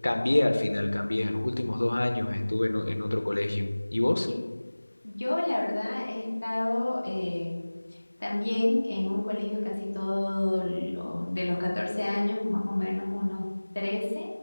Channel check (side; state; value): both; inverted; correlation -1.00